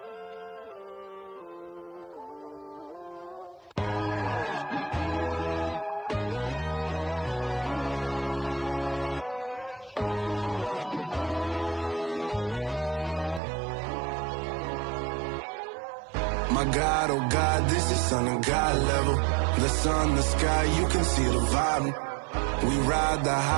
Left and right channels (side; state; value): left; drops out; at 13.4 s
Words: My God, oh God, this is Son of God level. The sun, the sky, you can see the vibe. We ride the